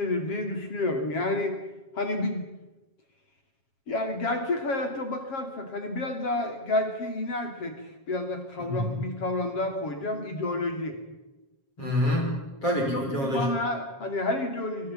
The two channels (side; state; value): right; late; 7.4 ms